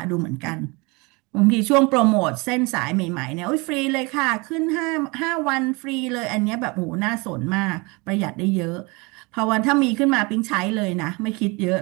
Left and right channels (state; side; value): quieter; left; 27.3 dB